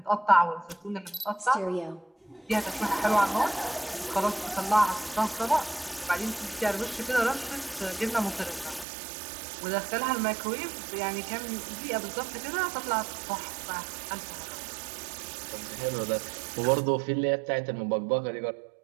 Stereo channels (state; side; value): drops out; left; at 8.8 s